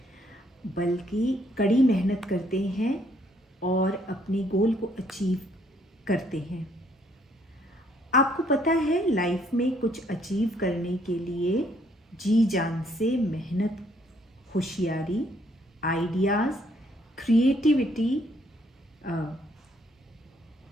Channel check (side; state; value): both; normal; correlation 0.67